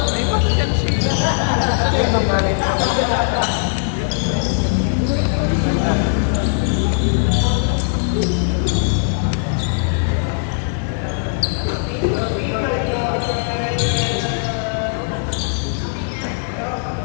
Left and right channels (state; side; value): silent; right; digital silence